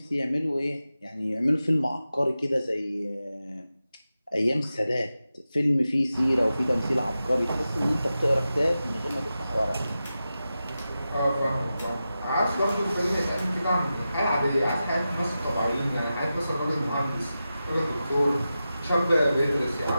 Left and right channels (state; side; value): inverted; both; correlation -0.92